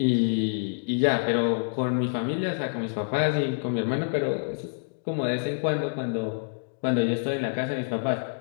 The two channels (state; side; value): silent; right; digital silence